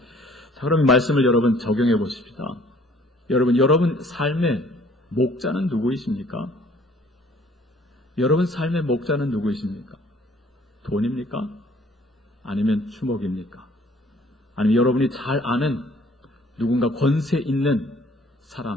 자, 그럼 이 말씀을 여러분 적용해 보십시다. 여러분 삶의 목자는 누구이십니까? 여러분 삶의 목자는 누구이십니까? 돈입니까? 아니면 주먹입니까? 아니면 여러분이 잘 아는 누군가 권세 있는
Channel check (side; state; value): both; normal; correlation 0.57